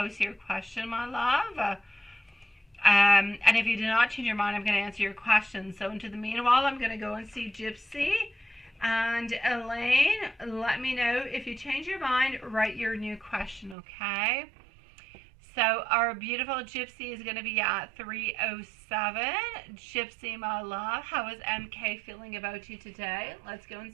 your question, my love. And if you did not change your mind, I'm going to answer your question. So into the meanwhile, I'm going to go and see Gypsy. And Elaine, let me know if you change your mind, write your new question, okay? So our beautiful Gypsy is going to be at 307. Gypsy, my love, how is MK feeling about you today? Let's go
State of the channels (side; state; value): left; drops out; at 13.8 s